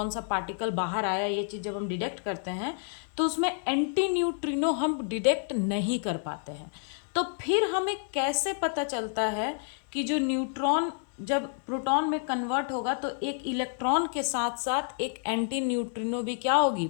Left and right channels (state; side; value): silent; right; 58 dB below the other